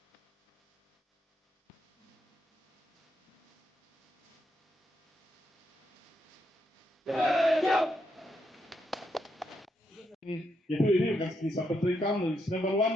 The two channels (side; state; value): both; normal; correlation 0.79